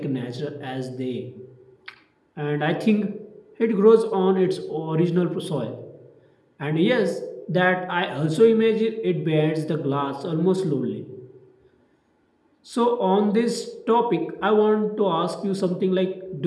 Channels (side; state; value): both; identical; correlation 1.00